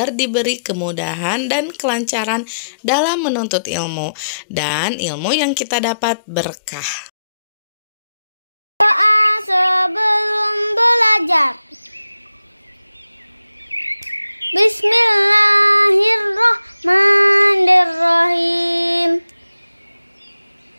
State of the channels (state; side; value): inverted; both; correlation -0.86